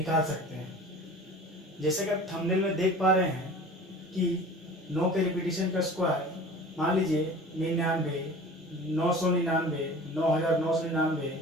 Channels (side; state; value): both; normal; correlation 0.41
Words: सकते हैं। जैसे कि आप थंबनेल में देख पा रहे हैं कि 9 के रिपीटेशन का स्क्वायर मान लीजिए 99, 999, 9999,